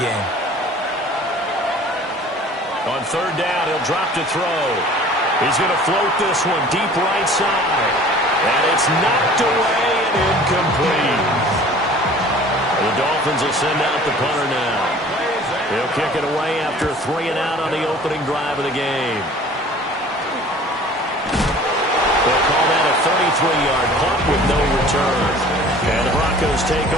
On 3rd down, he'll drop to throw. He's going to float this one deep right side. And it's knocked away and incomplete. The Dolphins will send out the punter now. He'll kick it away after a 3 and out on the opening drive of the game. They'll call that a 33-yard punt with no return. And the Broncos take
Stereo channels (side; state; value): both; normal; correlation 0.47